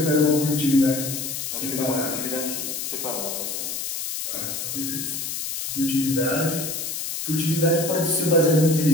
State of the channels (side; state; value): left; noise; hiss, 4 dB below the sound